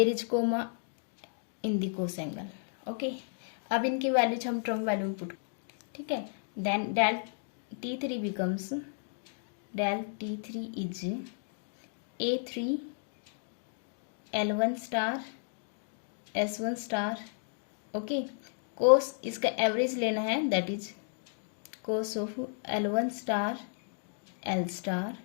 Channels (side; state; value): right; silent; digital silence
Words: is comma in the cos angle. Okay, अब इनकी वैल्यूज हम ट्रम वैल्यू में पुट। ठीक है, then del t3 becomes del t3 is a3 L1 star S1 star. Okay, cos इसका average लेना है that is cos of L1 star L star